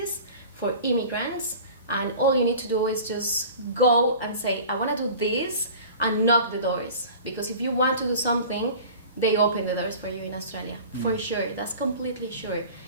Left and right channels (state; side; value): inverted; both; correlation -0.41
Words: for immigrants, and all you need to do is just go and say, I want to do this, and knock the doors. Because if you want to do something, they open the doors for you in Australia, for sure. That's completely sure.